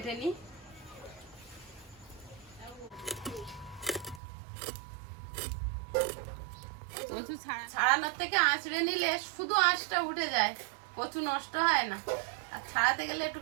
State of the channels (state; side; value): drops out; left; at 4.2 s